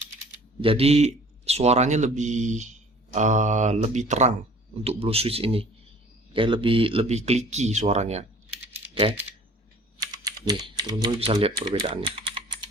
Jadi suaranya lebih terang untuk blue switch ini. Oke, lebih clicky suaranya. Oke. Nih, teman-teman bisa lihat perbedaannya.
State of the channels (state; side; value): normal; both; correlation 0.49